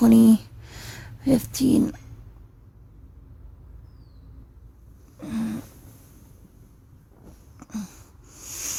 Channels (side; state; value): both; identical; correlation 1.00